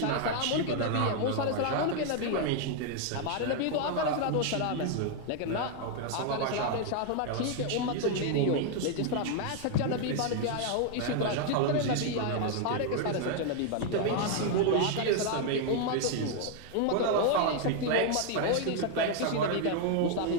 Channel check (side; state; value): both; different; correlation 0.00